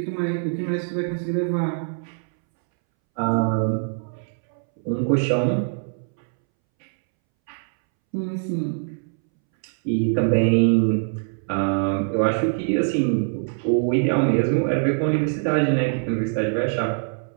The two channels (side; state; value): left; silent; 63 dB below the other